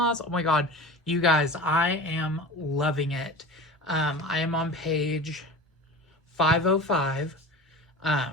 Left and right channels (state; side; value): normal; both; correlation 0.34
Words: Oh my god, you guys, I am loving it. I am on page 505.